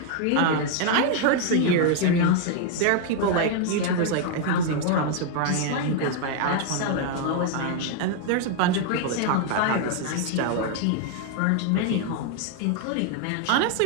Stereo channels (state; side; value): different; both; correlation 0.00